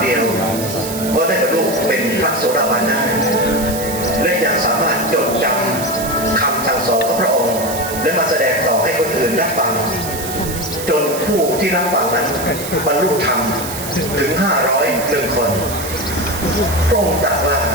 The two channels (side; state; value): right; noise; hiss, 8 dB below the sound